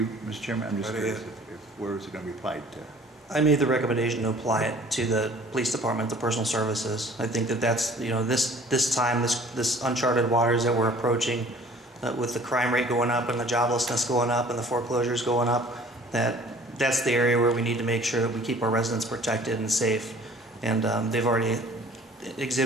Mr. Chairman? I'm just curious where is it going to be applied to? I made the recommendation to apply it to the police department, the personal services. I think that that's, you know, this time, this uncharted waters that we're approaching, with the crime rate going up and the joblessness going up and the foreclosures going up, that's the area where we need to make sure that we keep our residents protected and safe. And they've already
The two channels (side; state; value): both; normal; correlation 0.51